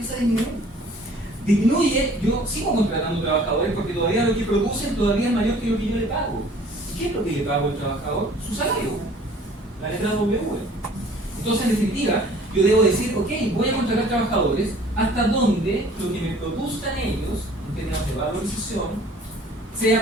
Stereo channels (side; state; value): both; normal; correlation 0.52